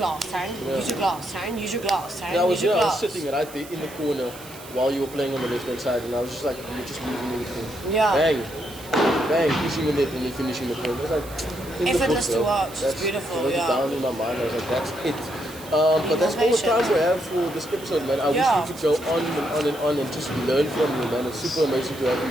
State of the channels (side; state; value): right; noise; hiss, 17 dB below the sound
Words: Taryn. Use your glass, Taryn. Use your glass, Taryn. And I was, Use your I was glass. sitting right there in the corner while you were playing on the left hand side, and I was just like, you're just losing everything. Yeah. Bang, bang, pushing the net and then finishing the point. I was like, in the Effortless book, to bro. watch. It's That's- beautiful, I wrote it yeah. down in my mind. I was like, that's it. But that's all the time we have for this episode, man. I wish Yeah. we could go on and on and on and just learn from you, man. It's super amazing to have